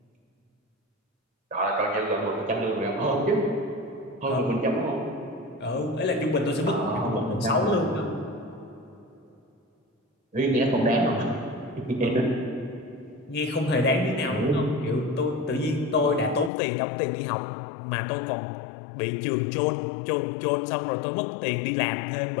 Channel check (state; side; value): drops out; right; at 16.5 s